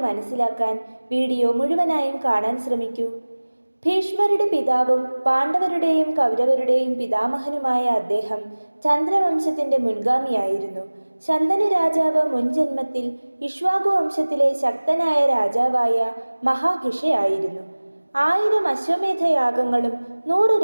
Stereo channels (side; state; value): both; inverted; correlation -1.00